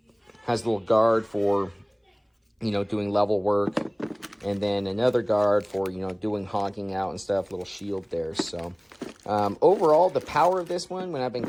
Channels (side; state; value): both; identical; correlation 1.00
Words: Has a little guard for, doing level work, and then another guard for, doing hogging out and stuff, little shield there. So overall, the power of this one, when I've been